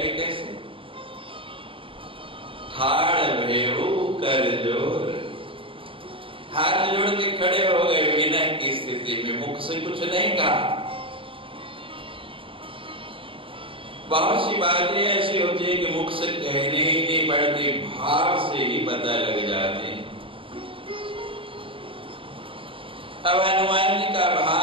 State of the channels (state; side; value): late; left; 0.25 ms